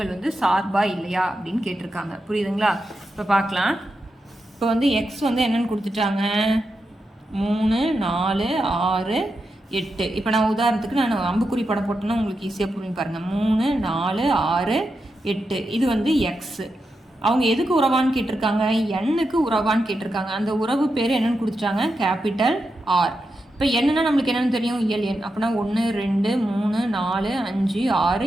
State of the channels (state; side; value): normal; both; correlation 0.87